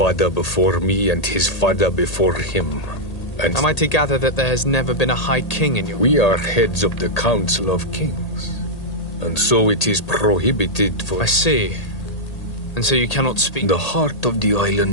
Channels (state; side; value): late; right; 1.8 ms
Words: before me and his father before him. And am I to gather that there has never been a High King in your... We are heads of the Council of Kings. And so it is prohibited for... I see. And so you cannot speak... The heart of the